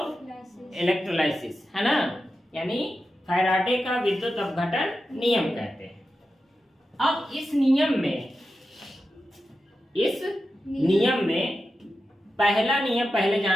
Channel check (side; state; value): both; normal; correlation 0.90